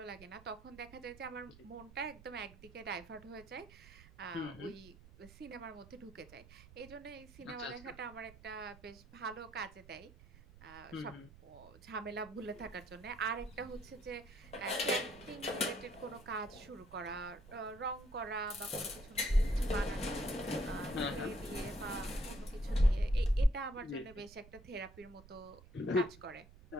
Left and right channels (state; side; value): noise; right; rumble, 20 dB below the sound